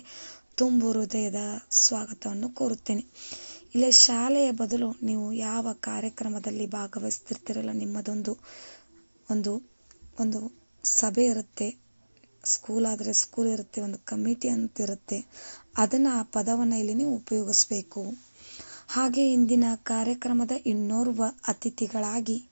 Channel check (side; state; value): both; inverted; correlation -1.00